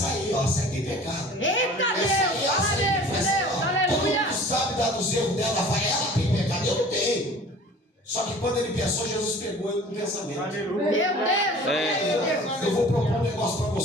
ó. Sai tem pecado. Eita Essa aí, Deus, essa fala aí que faz Deus, assim, ó. Todo aleluia. mundo sabe dar dos erros dela, vai, ela tem pecado, eu não tenho. Só que quando ele pensou, Jesus pegou ele no pensamento. Meu Deus, olha aí, Deus. Eu vou propor um negócio para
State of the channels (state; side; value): normal; both; correlation 0.45